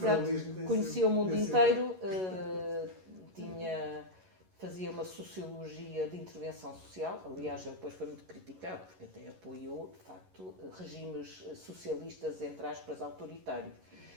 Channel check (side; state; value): left; late; 11 ms